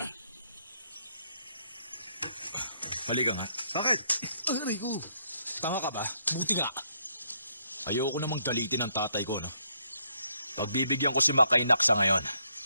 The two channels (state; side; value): inverted; both; correlation -0.73